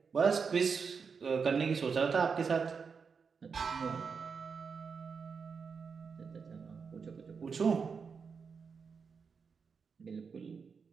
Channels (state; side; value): quieter; left; 5.7 dB